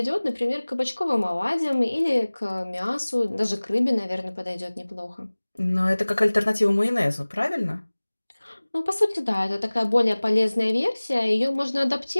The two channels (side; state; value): both; inverted; correlation -1.00